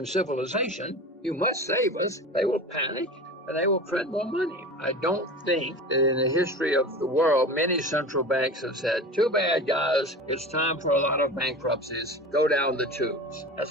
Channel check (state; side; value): normal; both; correlation 0.33